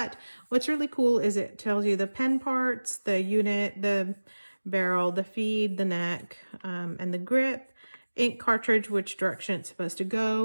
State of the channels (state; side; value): inverted; both; correlation -1.00